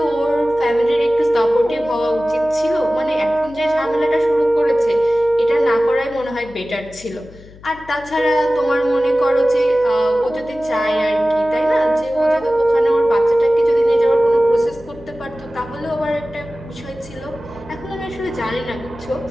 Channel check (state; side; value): noise; left; hum, 21 dB below the sound